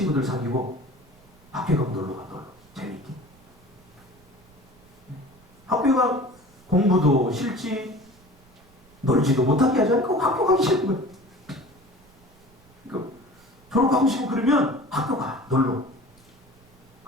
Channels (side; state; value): right; noise; rumble, 28 dB below the sound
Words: 사귀고 학교에 가면 놀러 가. 놀러. 재밌게. 학교가 공부도 싫지 놀지도 못하게 하지 않고 학교 가기 싫은 거예요. 그러니까 졸업하고 싶고 그러면 학교 가. 놀러.